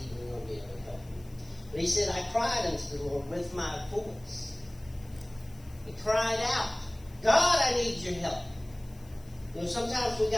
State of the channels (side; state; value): left; noise; hiss, 26 dB below the sound